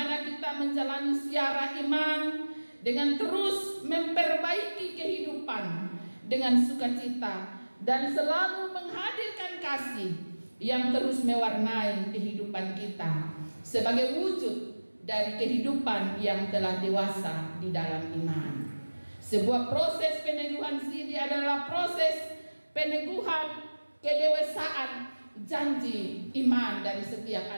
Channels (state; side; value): inverted; both; correlation -1.00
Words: kita menjalani siara iman dengan terus memperbaiki kehidupan dengan sukacita dan selalu menghadirkan kasih yang terus mewarnai kehidupan kita sebagai wujud dari kehidupan yang telah dewasa di dalam iman. Sebuah proses peneguhan sidi adalah proses peneguhan kedewasaan janji iman dari setiap